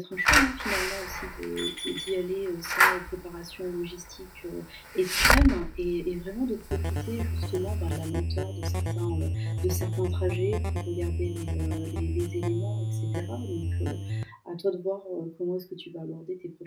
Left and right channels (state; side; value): identical; both; correlation 1.00